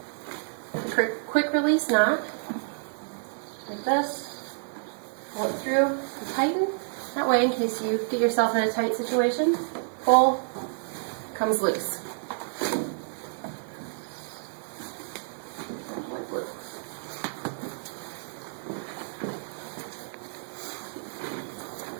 Quick release knot. Like this. Pull it through and tighten. That way, in case you get yourself in a tight situation, pull, comes loose.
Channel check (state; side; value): silent; left; digital silence